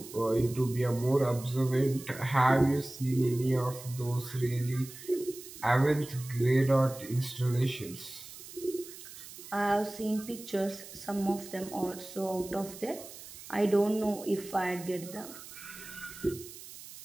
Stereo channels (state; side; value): noise; right; hiss, 15 dB below the sound